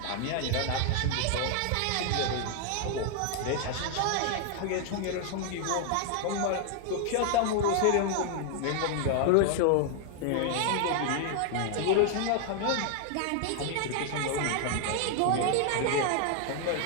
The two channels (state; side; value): different; both; correlation 0.00